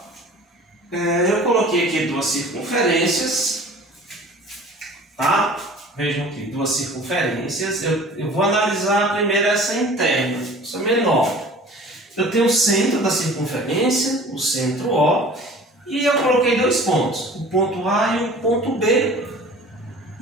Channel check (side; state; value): both; normal; correlation 0.45